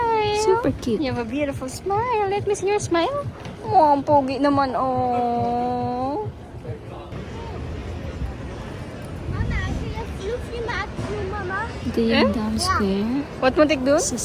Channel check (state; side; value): identical; both; correlation 1.00